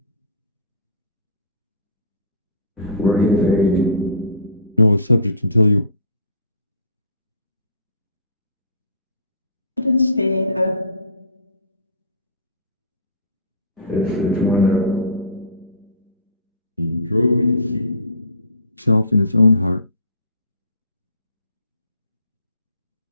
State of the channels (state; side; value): inverted; both; correlation -0.41